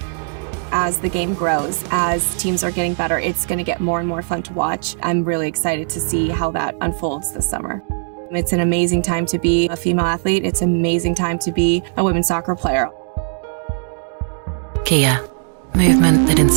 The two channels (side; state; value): left; silent; digital silence